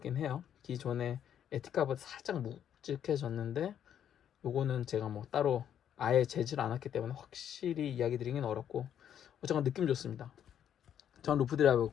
해요. 기존에 에티카보다 살짝 묵직해졌는데, 요거는 제가 뭐 따로 아예 재질 않았기 때문에 확실히 이야기 드리긴 어렵고, 어쨌건 느낌 좋습니다. 전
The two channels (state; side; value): quieter; right; 9.6 dB